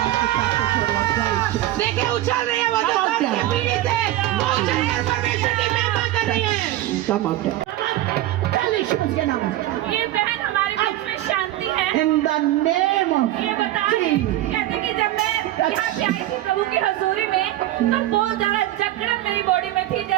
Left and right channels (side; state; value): left; quieter; 14.9 dB